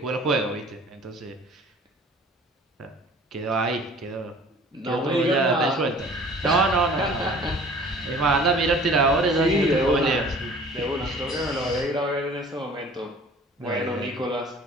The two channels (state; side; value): normal; both; correlation 0.48